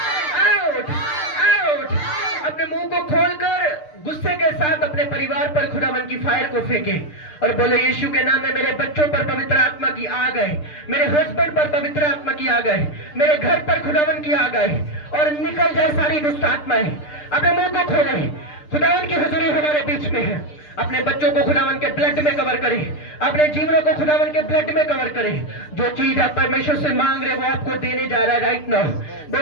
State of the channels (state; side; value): late; right; 6.7 ms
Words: out out. अपने मुंह को खोलकर गुस्से के साथ अपने परिवार पर खुदावन की फायर को फेंके और बोले यीशु के नाम में मेरे बच्चों पर पवित्र आत्मा की आ गए, मेरे हस्बैंड पर पवित्र आत्मा की आ गए, मेरे घर पर खुदावन की आ गए और निकल जाए सारी दुष्ट आत्माएं। अपने मुंह को खोले, खुदावन की हुजूरी हमारे बीच में है। अपने बच्चों को खुदावन के ब्लड में कवर करें, अपने जीवनों को खुदावन के ब्लड में कवर करें। जो चीज आप परमेश्वर से मांग रहे वो आपको देने जा रहा है राइट नाउ।